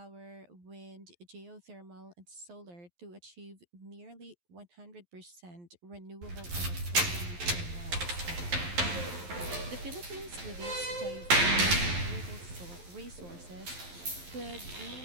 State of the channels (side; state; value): left; late; 11 ms